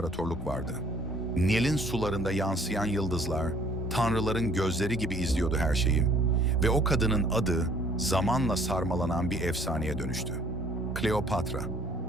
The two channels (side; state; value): both; normal; correlation 0.58